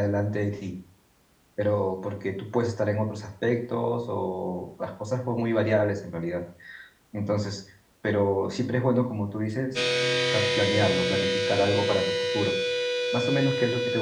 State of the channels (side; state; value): both; identical; correlation 1.00